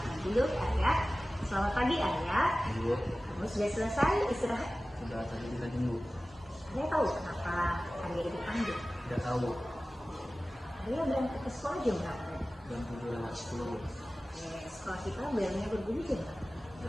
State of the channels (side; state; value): both; normal; correlation 0.96